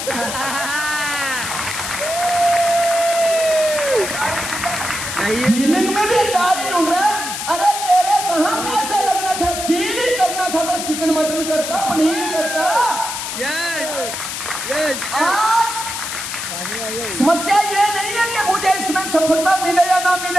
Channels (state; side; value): noise; left; hiss, 5 dB below the sound